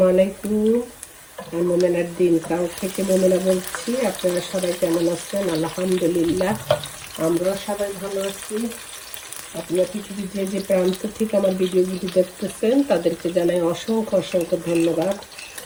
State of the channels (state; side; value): identical; both; correlation 1.00